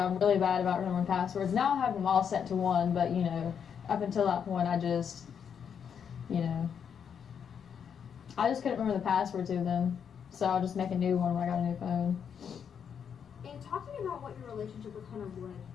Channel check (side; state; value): right; quieter; 7.6 dB